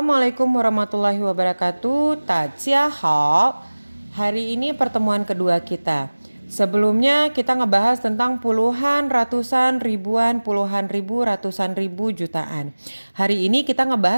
warahmatullahi wabarakatuh. Hao. Hari ini pertemuan kedua kita. Sebelumnya kita ngebahas tentang puluhan, ratusan, ribuan, puluhan ribu, ratusan ribu, jutaan. Hari ini kita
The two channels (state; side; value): inverted; both; correlation -1.00